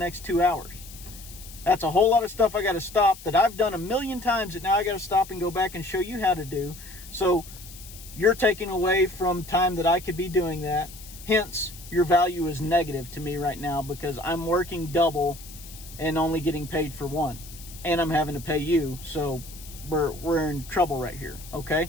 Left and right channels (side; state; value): left; noise; hiss, 17 dB below the sound